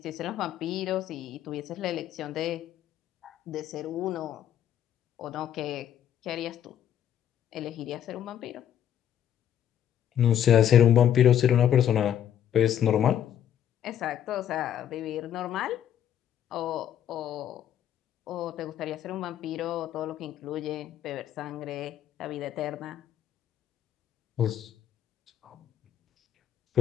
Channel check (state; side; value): quieter; right; 10.2 dB